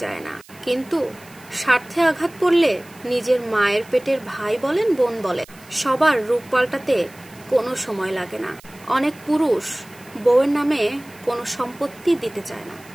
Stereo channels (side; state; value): right; noise; hiss, 24 dB below the sound